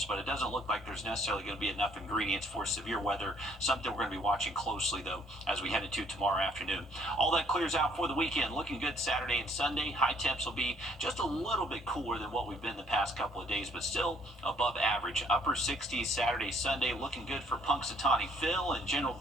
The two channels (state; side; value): normal; both; correlation 0.63